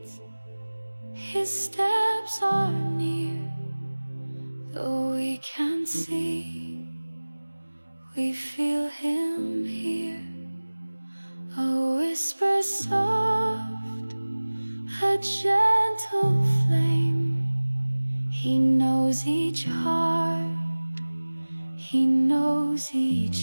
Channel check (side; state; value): both; inverted; correlation -1.00